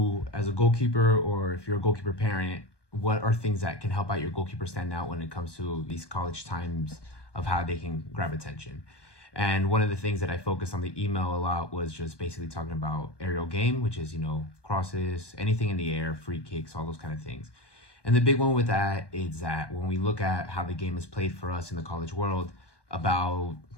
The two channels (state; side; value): late; right; 1.2 ms